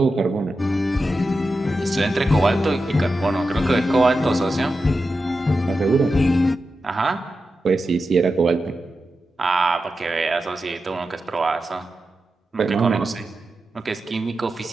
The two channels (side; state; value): both; normal; correlation 0.90